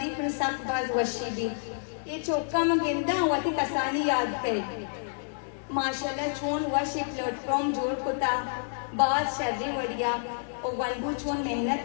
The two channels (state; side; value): silent; right; digital silence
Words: پر سخت باز وشی بھی یہ چوکا مگندہ واتی کسانی یاد کرے ماشاءاللہ چون وشی پلیٹ فارم جوڑ کتا بعض شرری وڑیا اور ونبو چون